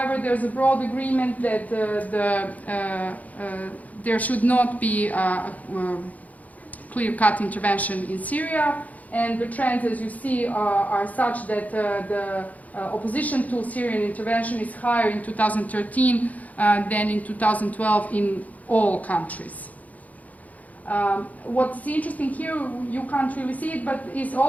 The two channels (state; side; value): late; right; 0.075 ms